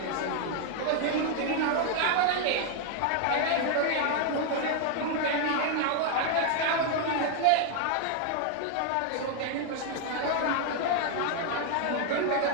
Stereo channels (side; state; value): both; different; correlation 0.00